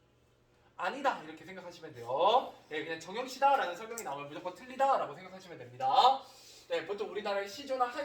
아니다, 이렇게 생각하시면 돼요. 그냥 정형시다 라는 설명이 나오면 무조건 틀리다 라고 생각하시면 됩니다. 보통 우리나라의 시조나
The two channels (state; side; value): identical; both; correlation 1.00